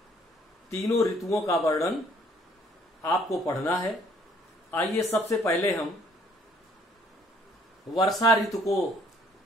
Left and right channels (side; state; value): both; normal; correlation 0.62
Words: तीनों ऋतुओं का वर्णन आपको पढ़ना है। आइए सबसे पहले हम वर्षा ऋतु को